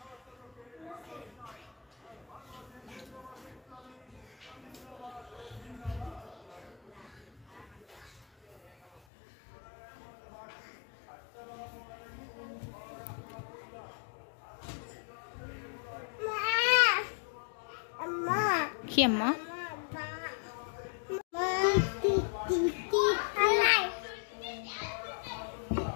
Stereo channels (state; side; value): drops out; right; at 9.0 s